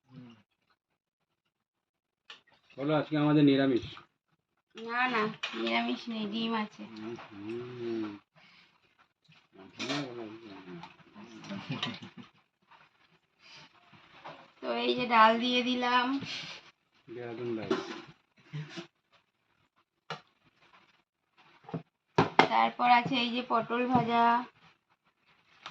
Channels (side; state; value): both; identical; correlation 1.00